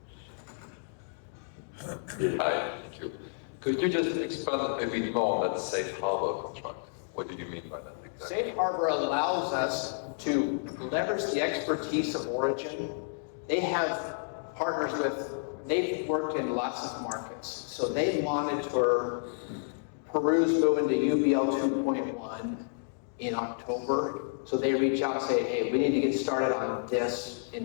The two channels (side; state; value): right; silent; digital silence